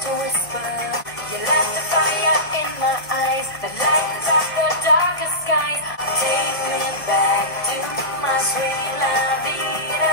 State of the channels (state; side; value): late; right; 1.3 ms